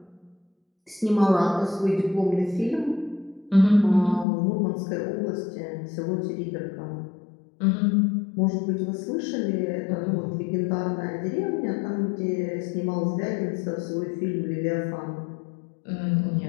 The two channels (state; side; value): drops out; right; at 4.2 s